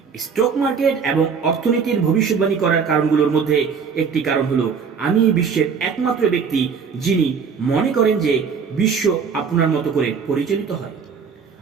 স্টক মার্কেট এবং অর্থনীতির ভবিষ্যৎবাণী করার কারণগুলোর মধ্যে একটি কারণ হলো আমি বিশ্বের একমাত্র ব্যক্তি যিনি মনে করেন যে বিশ্ব আপনার মতো করে পরিচালিত হয়।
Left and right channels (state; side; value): quieter; left; 6.1 dB